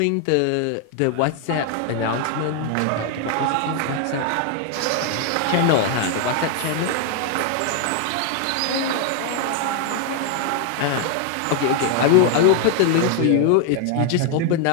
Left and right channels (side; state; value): both; different; correlation 0.00